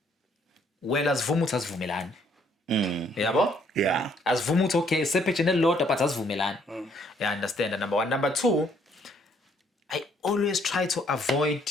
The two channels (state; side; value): normal; both; correlation 0.66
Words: wena asivuma ukuthi asivumelani. Yabo? Yeah. Asivuma ukuthi okay sepage nelodwa but asivumelani. Yeah, understand. Number 1. Number 2, I always try to avoid